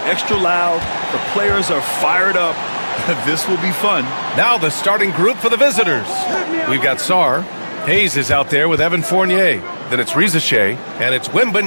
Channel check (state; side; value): inverted; both; correlation -1.00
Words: extra loud. The players are fired up. This will be fun. Now the starting group for the visitors. We've got Sarr. Hayes is out there with Evan Fournier. Then it's Rizashay, and it's